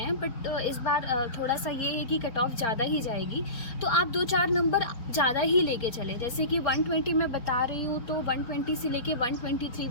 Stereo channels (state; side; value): late; right; 4.4 ms